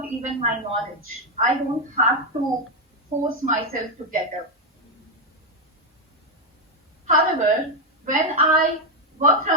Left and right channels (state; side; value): normal; both; correlation 0.04